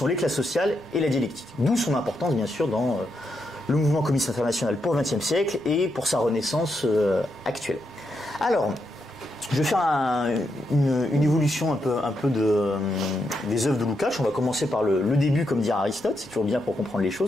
les classes sociales et la dialectique. D'où son importance, bien sûr, dans le mouvement communiste international pour le XXe siècle et pour sa renaissance actuelle. Alors, je vais faire une évolution un peu des œuvres de Lukács. On va commencer par le début, comme dirait Aristote, c'est toujours bien pour comprendre les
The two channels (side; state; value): right; noise; rumble, 25 dB below the sound